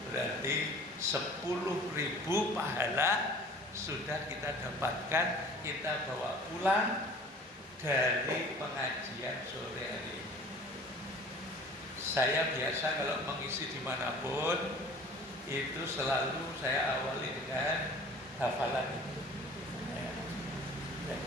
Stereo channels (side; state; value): both; normal; correlation 0.46